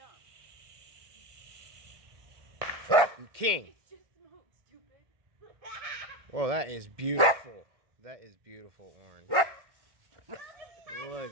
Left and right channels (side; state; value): left; late; 1.5 ms